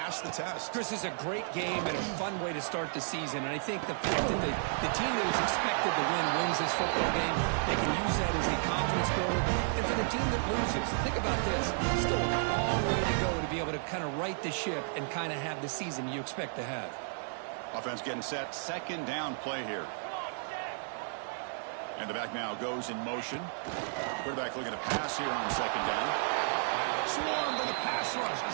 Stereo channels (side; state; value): left; silent; digital silence